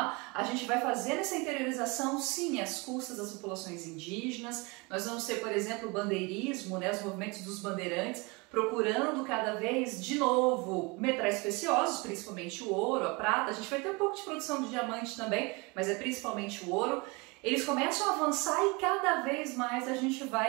A gente vai fazer essa interiorização, sim, às custas das populações indígenas. Nós vamos ter, por exemplo, o bandeirismo, né, os movimentos dos bandeirantes, procurando cada vez, de novo, metais preciosos, principalmente o ouro, a prata. A gente vai ter um pouco de produção de diamante também, mas é principalmente o ouro. Eles começam a avançar e cada vez mais a gente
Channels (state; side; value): quieter; left; 27.0 dB